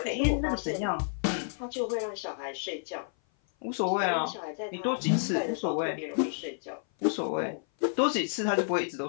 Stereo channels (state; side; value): silent; right; 56 dB below the other